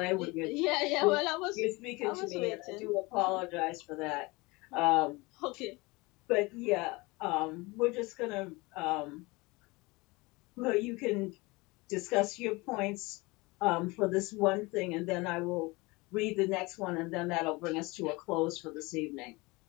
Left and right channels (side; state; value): right; quieter; 24.1 dB